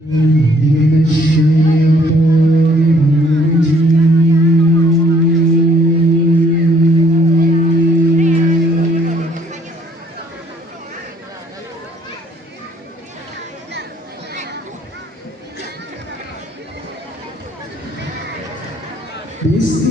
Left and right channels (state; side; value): normal; both; correlation 0.62